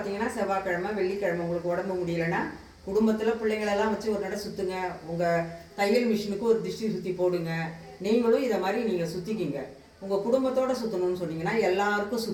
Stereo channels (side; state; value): both; identical; correlation 1.00